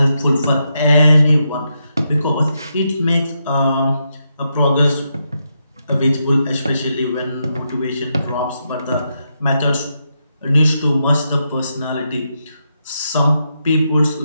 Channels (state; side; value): inverted; both; correlation -0.83